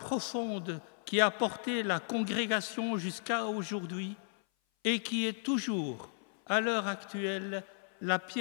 qui a porté la congrégation jusqu'à aujourd'hui et qui est toujours, à l'heure actuelle, la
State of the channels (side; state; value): right; silent; 55 dB below the other